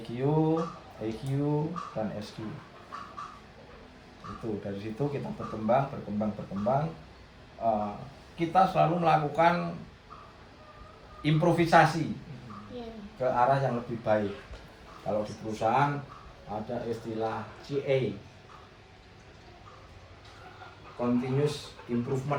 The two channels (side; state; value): both; identical; correlation 1.00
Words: EQ, dan SQ. Itu dari situ kita berkembang. Kita selalu melakukan improvisasi ke arah yang lebih baik. Kalau di perusahaan ada istilah CA, continuous